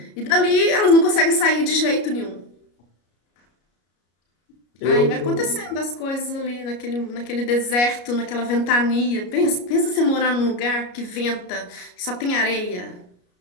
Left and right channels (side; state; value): right; late; 33 ms